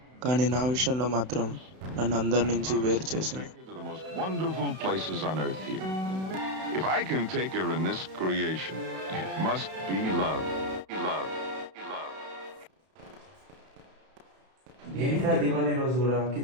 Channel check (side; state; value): left; late; 32 ms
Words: కానీ నా విషయంలో మాత్రం నన్ను అందరి నుంచి వేరు చేసింది. Take you to the most wonderful places on earth here. If I can take her in this creation, it must be love. Love. Love. ఏంట్రా దివాళీ రోజు కూడా